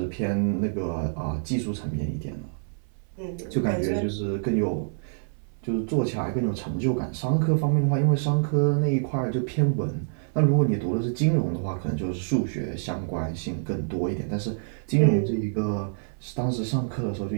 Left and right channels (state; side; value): silent; left; 59 dB below the other